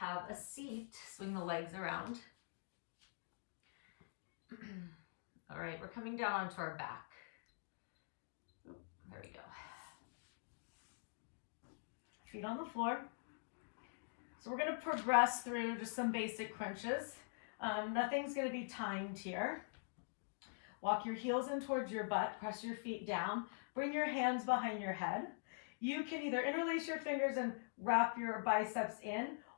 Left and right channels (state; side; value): silent; right; digital silence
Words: a seat. Swing the legs around. All right, we're coming down onto our back. There we go. Feet on the floor. So we're going to progress through just some basic crunches. Nothing's going to be timed here. Walk your heels in towards your butt. Press your feet down. Bring your hands behind your head. You can either interlace your fingers and wrap your biceps in,